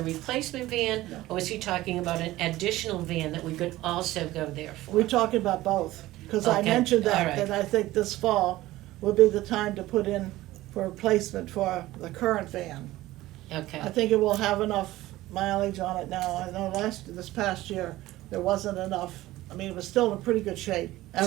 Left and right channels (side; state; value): left; quieter; 16.8 dB